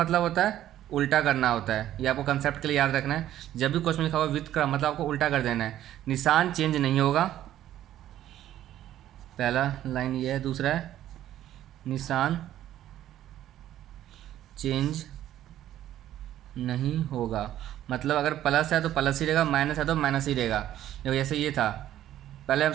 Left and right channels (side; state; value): left; quieter; 12.5 dB